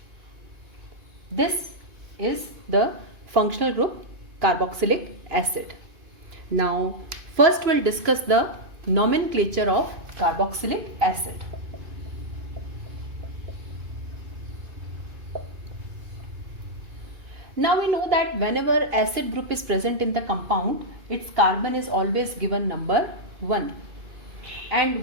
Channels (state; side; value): late; left; 2.5 ms